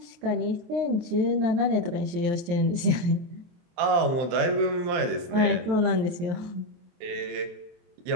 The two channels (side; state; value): left; late; 23 ms